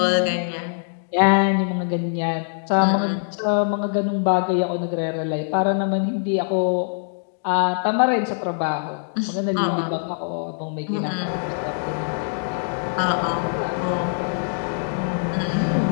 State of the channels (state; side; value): silent; right; digital silence